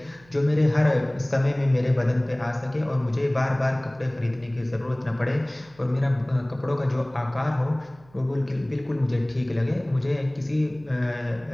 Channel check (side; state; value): right; noise; hum, 27 dB below the sound